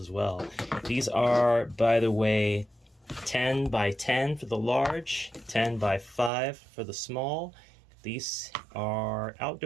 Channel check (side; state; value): left; drops out; at 6.3 s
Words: well. These are, by the way, 10 by 10 for the large, 10 by 5 for the small. These are